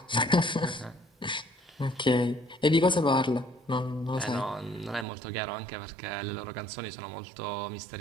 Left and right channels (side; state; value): left; drops out; at 5.1 s